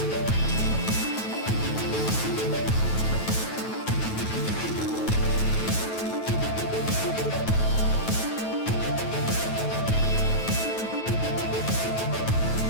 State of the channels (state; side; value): late; right; 9.2 ms